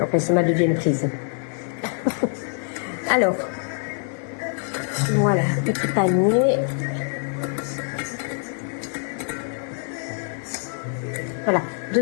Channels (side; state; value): right; silent; 55 dB below the other